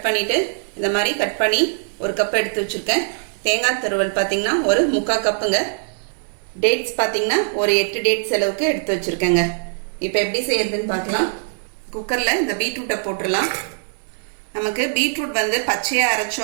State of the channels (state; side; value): silent; left; digital silence